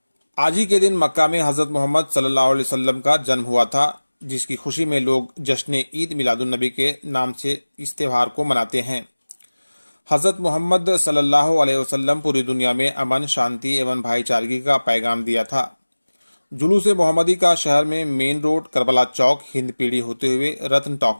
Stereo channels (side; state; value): both; inverted; correlation -1.00